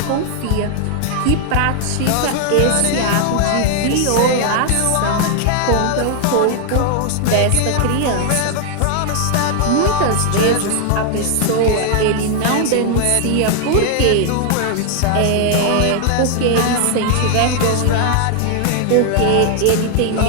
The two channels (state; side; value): different; both; correlation 0.00